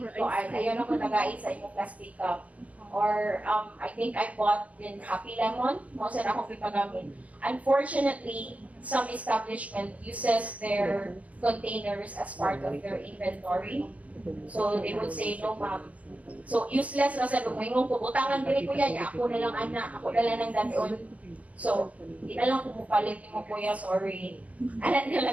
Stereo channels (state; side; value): late; left; 0.068 ms